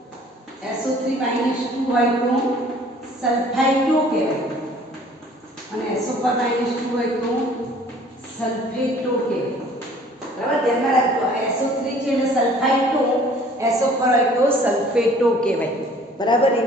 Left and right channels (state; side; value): normal; both; correlation 0.53